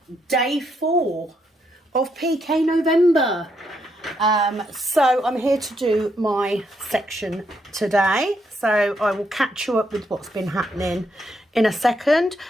day 4 of PK November. So I'm here to do my section today, so I will catch you up with what's been happening in a second.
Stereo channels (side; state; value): both; normal; correlation 0.77